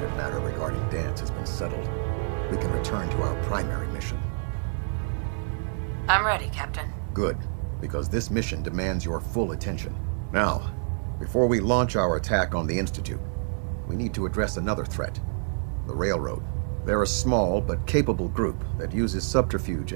matter regarding Dance has been settled, we can return to our primary mission. I'm ready, Captain. Good, because this mission demands your full attention. Now, before we launch our attack on the Institute, we need to address another threat, the Railroad. They're a small but capable group that uses subterfuge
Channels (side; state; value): left; silent; digital silence